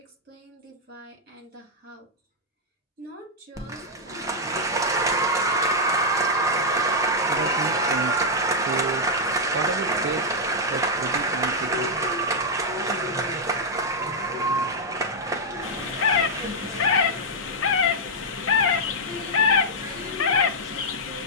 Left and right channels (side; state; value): both; normal; correlation -0.04